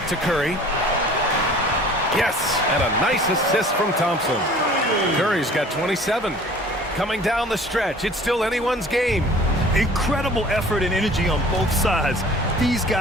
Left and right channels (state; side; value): normal; both; correlation 0.48